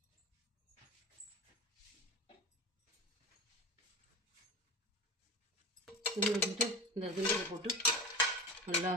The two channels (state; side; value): normal; both; correlation 0.27